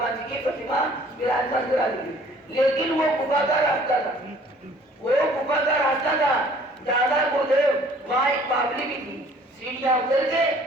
जी की प्रतिमा विराजमान करा दी, लेकिन वो गुफा का रास्ता था, वो गुफा का रास्ता था। दादा गुरुदेव वहाँ एक बावली भी थी, सीढ़ियां उतर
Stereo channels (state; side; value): normal; both; correlation 0.55